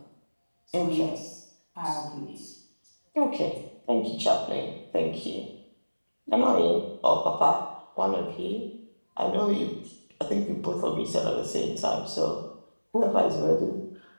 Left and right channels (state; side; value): inverted; both; correlation -1.00